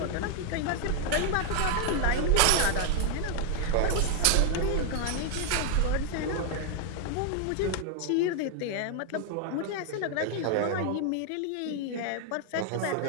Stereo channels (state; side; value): different; both; correlation 0.00